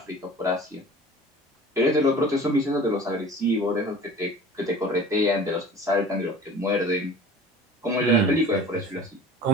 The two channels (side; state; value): both; normal; correlation 0.42